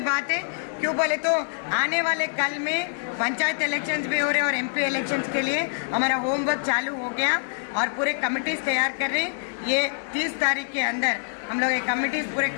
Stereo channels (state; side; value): silent; right; digital silence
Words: बात है। क्यों बोले तो आने वाले कल में पंचायत इलेक्शंस भी हो रहे हैं और एमपी इलेक्शंस के लिए हमारा होमवर्क चालू हो गया और पूरे कमिटीज तैयार कर रहे हैं। ये 30 तारीख के अंदर हम लोग ये कमिटीज पूरे